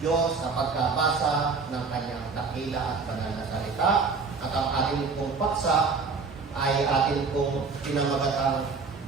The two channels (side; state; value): left; quieter; 4.7 dB